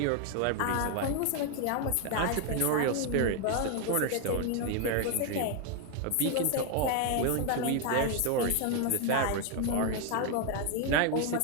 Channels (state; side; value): different; both; correlation 0.01